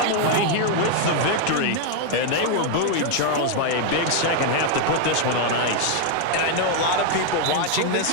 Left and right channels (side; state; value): both; different; correlation 0.00